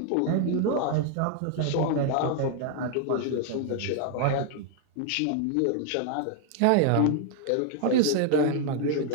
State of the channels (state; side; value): different; both; correlation 0.00